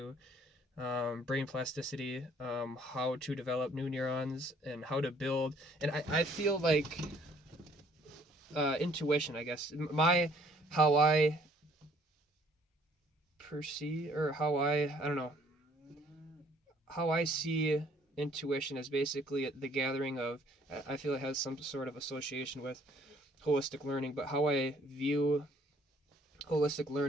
Brain plasticity, how to develop new neurons, and how to build. And I feel like intuition, I guess, how I perceive, or how I don't know, how I see intuition as basically the gathering of, I feel it has some sort of association with holistic learning, but how I view holistic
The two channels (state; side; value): normal; both; correlation 0.61